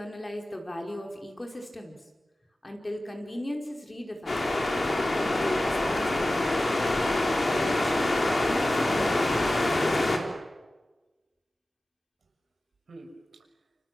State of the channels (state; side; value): normal; both; correlation 0.96